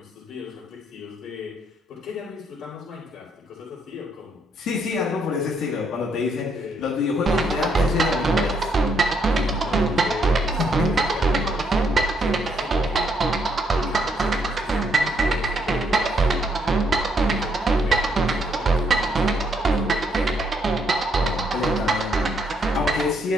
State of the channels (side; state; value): both; normal; correlation 0.73